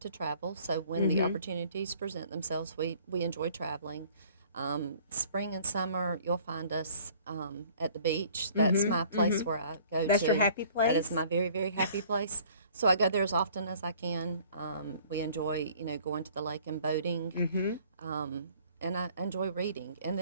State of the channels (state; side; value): inverted; both; correlation -0.54